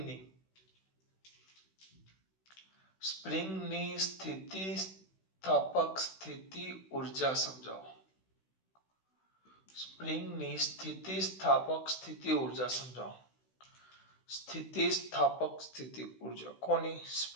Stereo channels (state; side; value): late; right; 16 ms